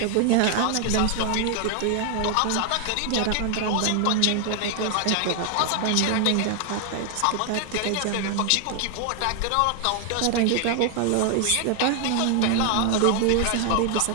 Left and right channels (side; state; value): both; different; correlation 0.00